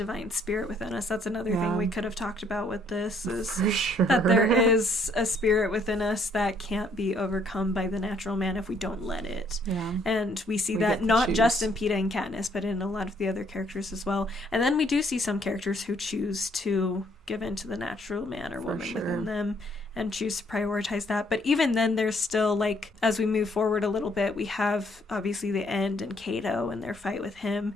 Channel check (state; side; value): normal; both; correlation 0.66